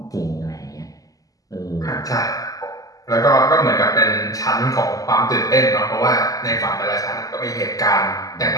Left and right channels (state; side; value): late; right; 0.17 ms